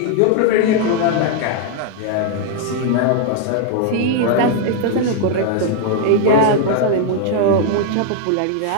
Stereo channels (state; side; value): different; both; correlation 0.00